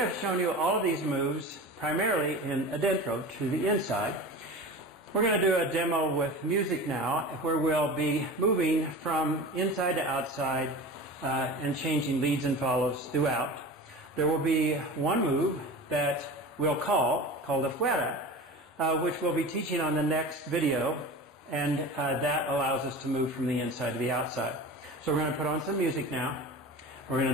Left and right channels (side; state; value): both; normal; correlation 0.33